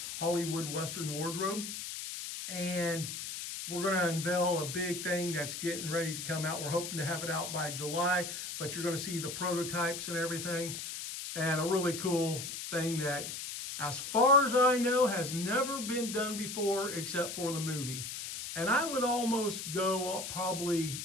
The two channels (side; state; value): left; noise; hiss, 6 dB below the sound